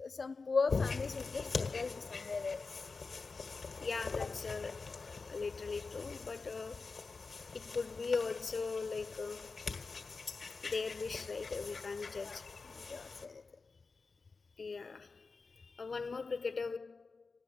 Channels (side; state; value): right; quieter; 4.3 dB